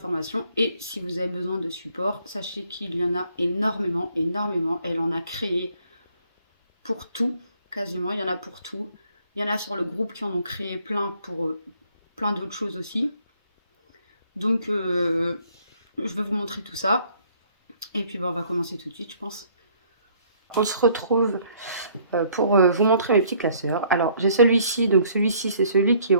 Et si vous avez besoin de support, sachez qu'il y en a énormément, énormément. Elle en a créé pour tout. Quasiment, il y en a pour tout. Il y en a sur le groupe qui en ont créé plein pour plein d'autres choses aussi. Donc, je vais vous montrer tout ça. Et puis, on va commencer tout de suite, je pense. On se retrouve pour vous montrer mes petits classeurs. Alors, j'ai celui-ci. Donc, celui-ci, c'est celui qui est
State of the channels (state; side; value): inverted; both; correlation -0.62